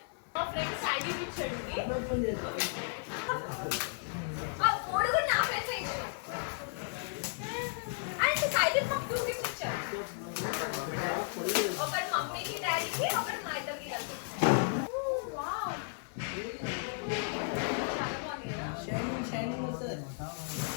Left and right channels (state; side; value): silent; right; 55 dB below the other